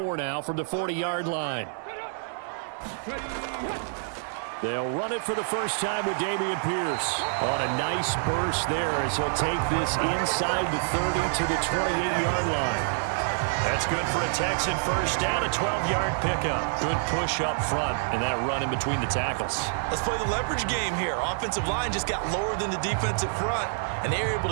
now from the 40-yard line. They'll run it for the first time with Dameon Pierce on a nice burst there as he'll take this inside the 30 to the 28-yard line. That's good for a Texan first down, a 12-yard pickup. Good push up front and that run in between the tackles. Let's play the leverage game here. Offensive line just got lower than the defensive front, and they were able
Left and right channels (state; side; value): silent; left; digital silence